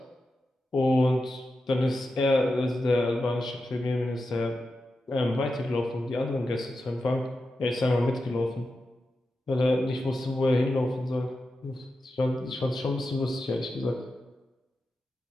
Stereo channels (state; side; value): normal; both; correlation 0.90